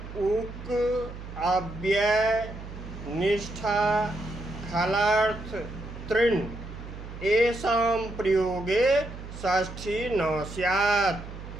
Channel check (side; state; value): right; noise; hum, 12 dB below the sound